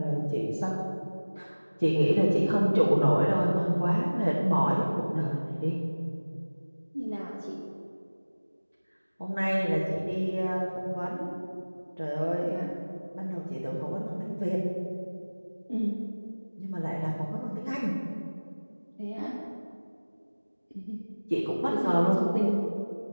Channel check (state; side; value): inverted; both; correlation -1.00